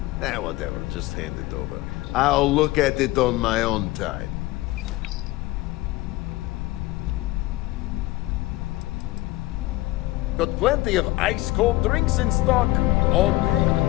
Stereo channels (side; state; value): right; quieter; 18.7 dB